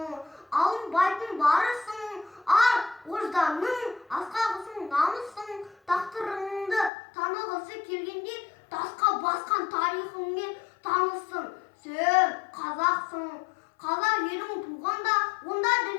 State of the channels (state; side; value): drops out; right; at 6.9 s